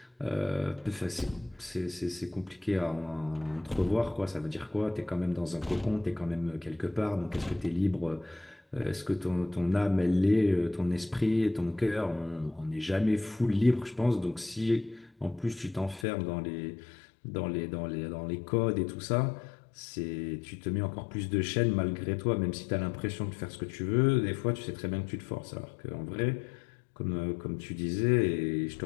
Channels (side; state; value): right; drops out; at 16.1 s